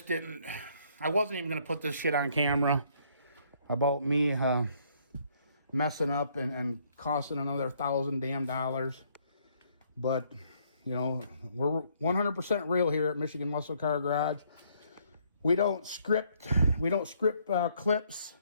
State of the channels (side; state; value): both; inverted; correlation -0.67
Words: wasn't even going to put this shit on camera about me messing up and costing another $1,000 damn. But, you know, we're 100% real here at Michigan Muscle Car Garage. We don't script clips